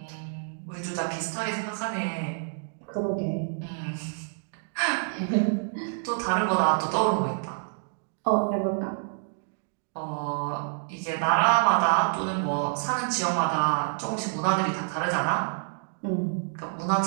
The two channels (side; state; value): left; silent; digital silence